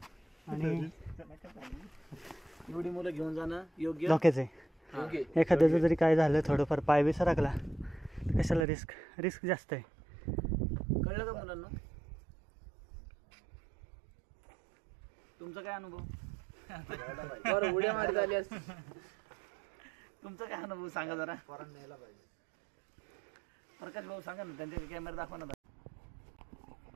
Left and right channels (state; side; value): drops out; left; at 8.7 s